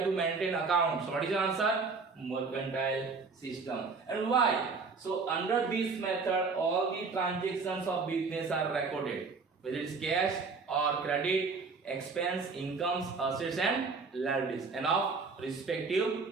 to maintain accounts? What is your answer? Mercantile system. And why? So under this method all the transactions of business are recorded, whether it's cash or credit, expense, incomes, assets and liabilities, and of respective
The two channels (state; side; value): quieter; left; 4.5 dB